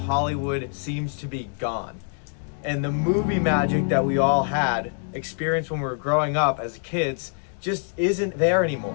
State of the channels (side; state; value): right; silent; 58 dB below the other